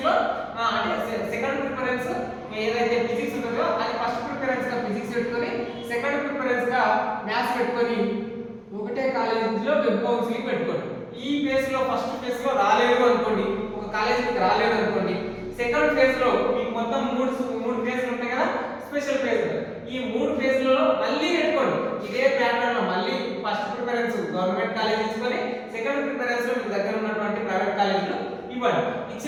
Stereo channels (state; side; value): identical; both; correlation 1.00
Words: లో అంటే సెకండ్ ప్రిఫరెన్స్ ఏదైతే ఫిజిక్స్ ఉంటుందో అది ఫస్ట్ ప్రిఫరెన్స్ గా ఫిజిక్స్ పెట్టుకొని సెకండ్ ప్రిఫరెన్స్ గా మ్యాథ్స్ పెట్టుకొని ఒకటే కాలేజీలో వెబ్ కౌన్సిలింగ్ పెట్టుకోండి. ఈ ఫేజ్ లో ఫస్ట్ ఫేజ్ లో రాలేదు అనుకోండి, ఒక కాలేజీకి రాలేదు అనుకోండి, సెకండ్ ఫేజ్ లో మీకు మొత్తం 3 ఫేజ్లు ఉంటాయి కదా, స్పెషల్ ఫేజ్